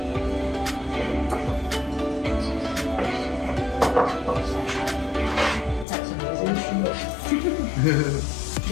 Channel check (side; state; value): right; drops out; at 5.9 s